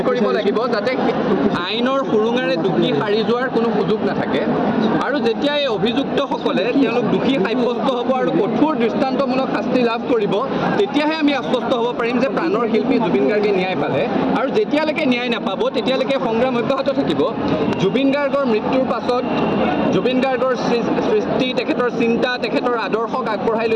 কৰিব লাগিব, যাতে আইনৰ সুৰুঙাৰে দোষী সাৰি যোৱাৰ কোনো সুযোগ নাথাকে। আৰু যেতিয়া এই অভিযুক্তসকলে তেওঁলোক দোষী সাব্যস্ত হ'ব আৰু কঠোৰ দৃষ্টান্তমূলক শাস্তি লাভ কৰিব, তেতিয়াহে আমি আশ্বস্ত হ'ব পাৰিম যে প্ৰাণৰ শিল্পী জুবিন গাৰ্গে ন্যায় পালে। আৰু যেতিয়ালৈকে ন্যায় নাপাব তেতিয়ালৈকে সংগ্ৰাম অব্যাহত থাকিব। জুবিন গাৰ্গৰ মৃত্যুৰ পাছত জুবিন গাৰ্গৰ সৃষ্টি, তেখেতৰ চিন্তা, তেখেতৰ আদৰ্শক আগবঢ়াই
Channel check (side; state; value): both; identical; correlation 1.00